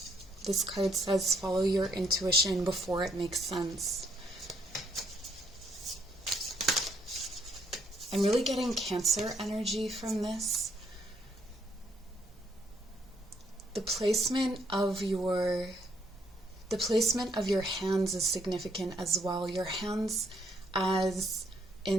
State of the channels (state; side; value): normal; both; correlation 0.70